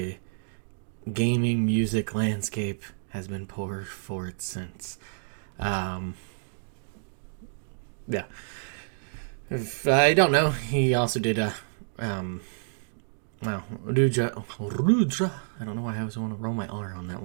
gaming music landscape has been poor for it since. Yeah. If I don't know, he also did Rudra. I don't know why I always want to roll my R on that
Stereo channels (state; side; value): silent; left; 59 dB below the other